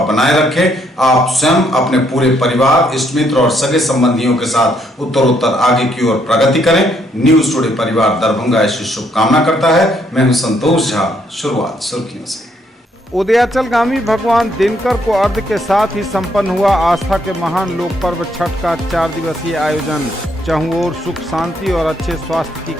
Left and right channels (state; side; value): normal; both; correlation 0.71